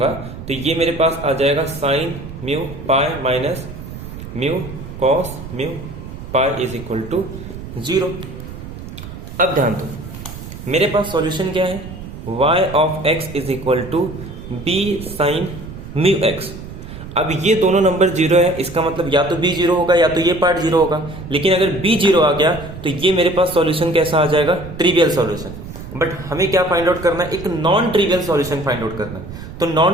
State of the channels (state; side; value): noise; right; rumble, 12 dB below the sound